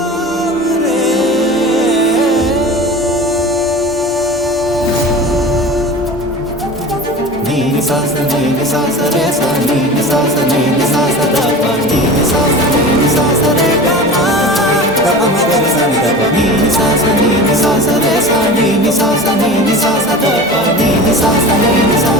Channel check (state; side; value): normal; both; correlation 0.35